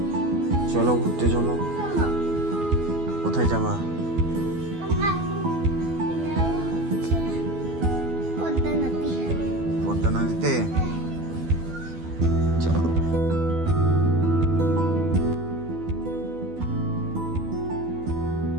চলো ঘুরতে চলো। কোথায় যাবা? পদ্মা নদীতে। চলো।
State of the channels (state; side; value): late; left; 12 ms